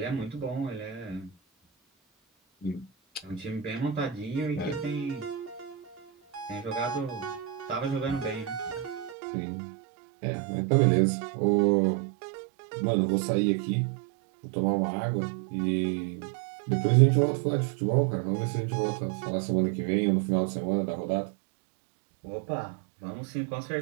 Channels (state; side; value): drops out; left; at 9.2 s